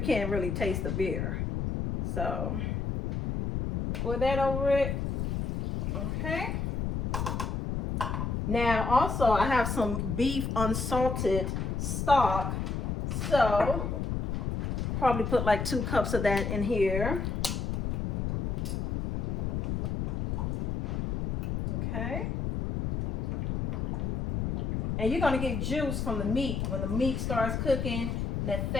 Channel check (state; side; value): noise; left; rumble, 1 dB below the sound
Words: can't really taste the beer. So pour that over it. Okay. Now also I have some beef unsalted stock. So probably put like 2 cups of that in here. Okay. And you're going to get juice from the meat. When the meat starts cooking, that